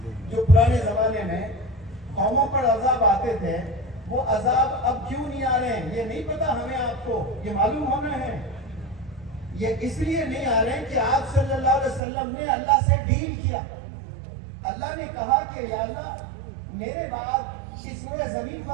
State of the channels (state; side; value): drops out; left; at 12.0 s